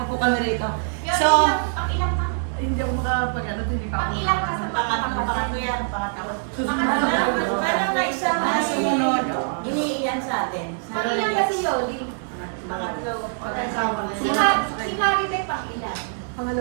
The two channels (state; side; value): silent; left; 63 dB below the other